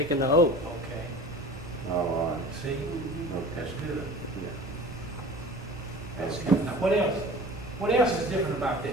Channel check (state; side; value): normal; both; correlation 0.41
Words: the oath. Okay. Oh, all right. See? That's Okay. good. Yeah. That's good. Now, what else? What else is different about